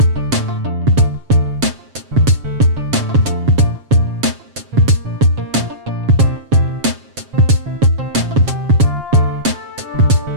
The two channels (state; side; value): late; left; 7.5 ms